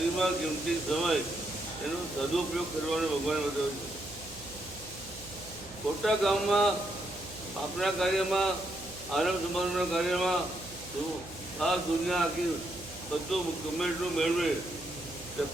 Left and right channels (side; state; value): right; noise; hum, 17 dB below the sound